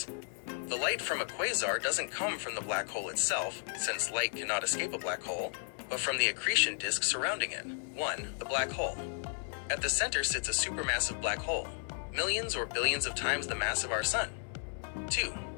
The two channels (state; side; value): silent; right; 55 dB below the other